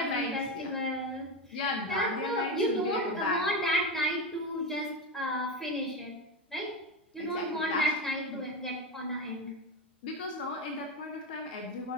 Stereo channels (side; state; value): both; normal; correlation 0.16